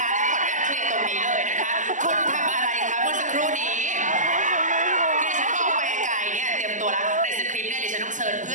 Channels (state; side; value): late; left; 0.37 ms